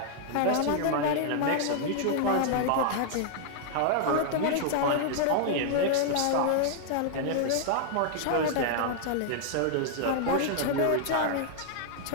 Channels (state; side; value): different; both; correlation 0.00